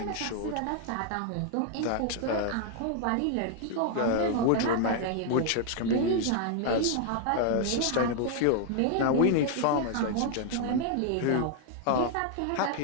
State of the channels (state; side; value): different; both; correlation 0.00